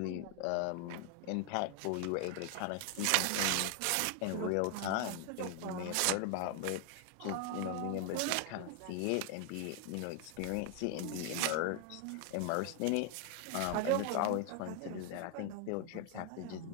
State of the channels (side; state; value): both; different; correlation 0.00